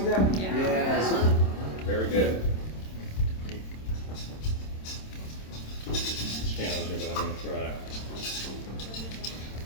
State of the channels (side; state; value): right; late; 27 ms